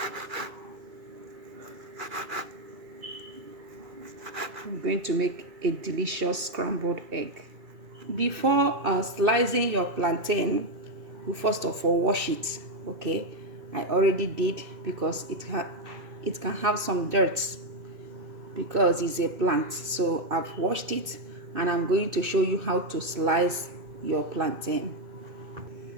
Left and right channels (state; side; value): late; left; 2.6 ms